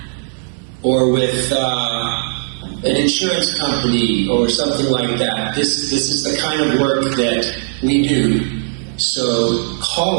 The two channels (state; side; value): silent; left; 64 dB below the other